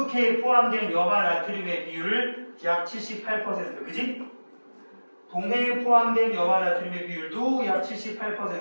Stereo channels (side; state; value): both; inverted; correlation -1.00